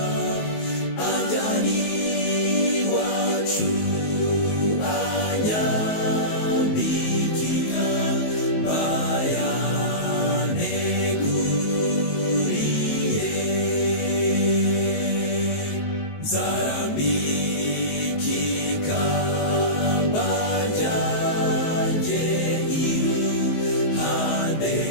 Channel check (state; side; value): late; right; 19 ms